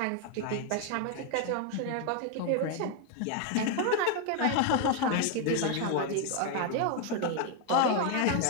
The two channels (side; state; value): both; different; correlation 0.01